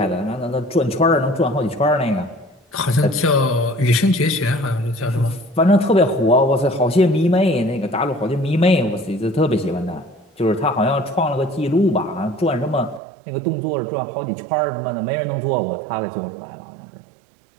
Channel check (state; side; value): drops out; left; at 13.0 s